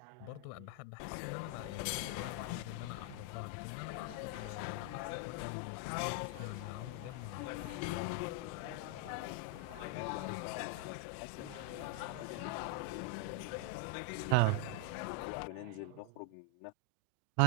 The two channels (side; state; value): both; different; correlation 0.00